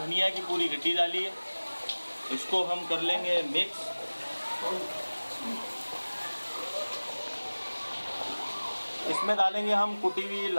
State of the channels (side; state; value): both; inverted; correlation -1.00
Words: की पूरी गड्डी डाली है। इसको हम कर लेंगे मिक्स। इसमें डालेंगे हम कुटी हुई